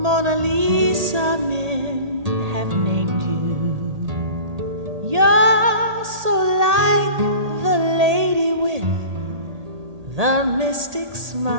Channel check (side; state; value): left; late; 1.8 ms